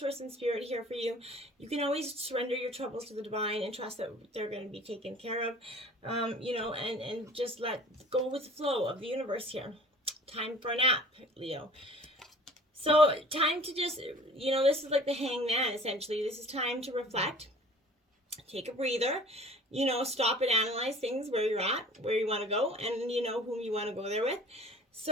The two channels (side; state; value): both; normal; correlation 0.47